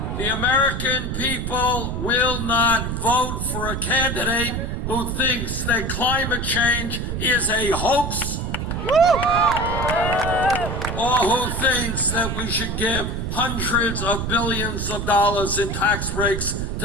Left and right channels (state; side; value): noise; right; rumble, 3 dB below the sound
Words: The American people will not vote for a candidate who thinks that climate change is a hoax, or who thinks that we should give hundreds of billions of dollars in tax breaks